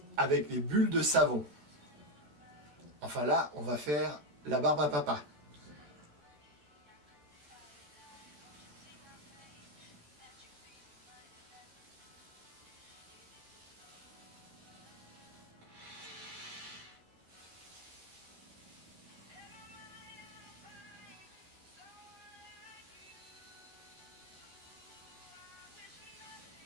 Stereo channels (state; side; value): late; left; 14 ms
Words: avec les bulles de savon. Enfin là, on va faire la barbe à papa.